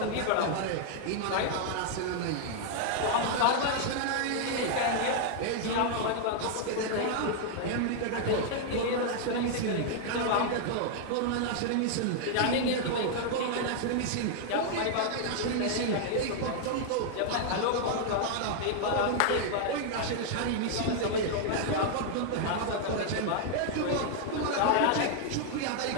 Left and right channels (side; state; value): both; different; correlation 0.00